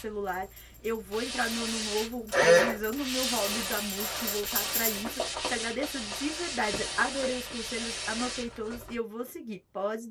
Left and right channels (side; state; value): both; identical; correlation 1.00